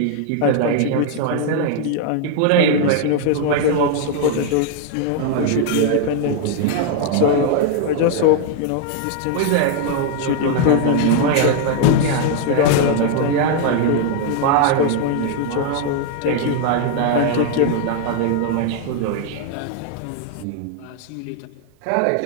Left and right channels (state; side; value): different; both; correlation 0.00